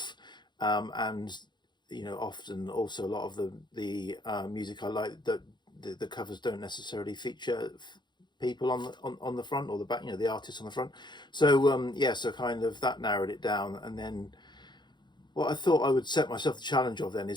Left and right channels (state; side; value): late; right; 0.21 ms